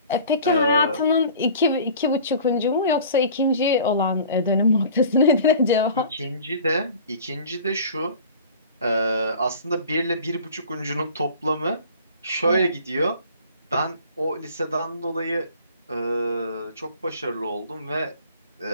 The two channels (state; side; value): inverted; both; correlation -0.45